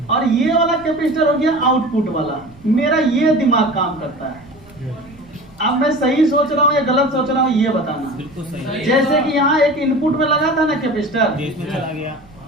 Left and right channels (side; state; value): right; noise; rumble, 25 dB below the sound